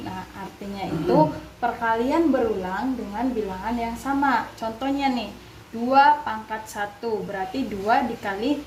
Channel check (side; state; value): both; identical; correlation 1.00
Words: Nah, artinya itu perkalian berulang dengan bilangan yang sama. Contohnya nih, 2 pangkat 1 berarti 2 dikali